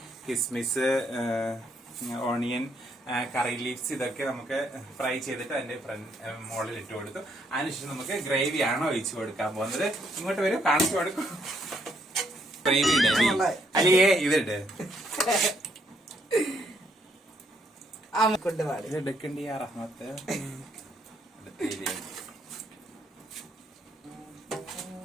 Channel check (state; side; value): normal; both; correlation 0.72